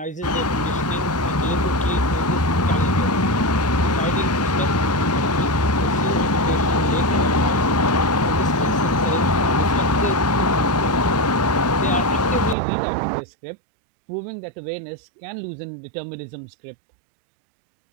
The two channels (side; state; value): left; drops out; at 12.6 s